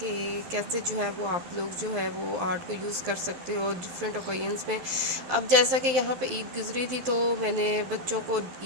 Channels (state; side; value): late; left; 11 ms